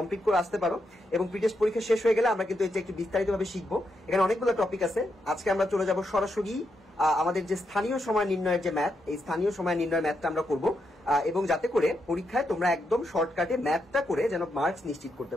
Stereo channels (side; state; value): both; normal; correlation 0.82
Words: করে আসতে পারো। এবং প্রিটেস্ট পরীক্ষা শেষ হয়ে গেলে আমরা কিন্তু এটা একটু বিস্তারিতভাবে শিখবো। এখানে অনেকগুলো টপিক আছে। আজকে আমরা চলে যাব সরাসরি আমাদের যে স্থানীয় সময় নির্ণয়ের যে ম্যাথ, এই স্থানীয় সময় নির্ণয় ম্যাথটা আমরা করব, এবং যাতে করে পরীক্ষায় তোমরা একদম শর্টকাটে ম্যাথটা করে যেন মার্কস নিশ্চিত করতে